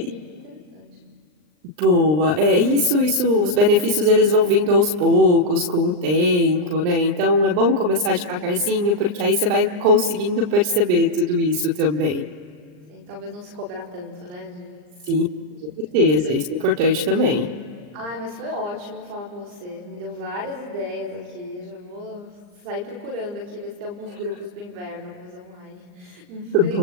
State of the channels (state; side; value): late; left; 39 ms